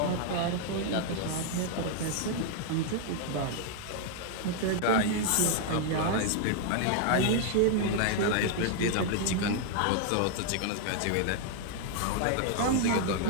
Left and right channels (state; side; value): different; both; correlation 0.00